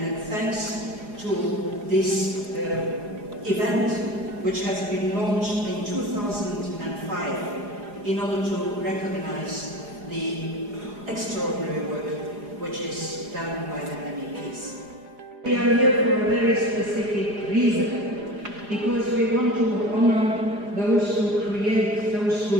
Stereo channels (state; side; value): late; left; 4.9 ms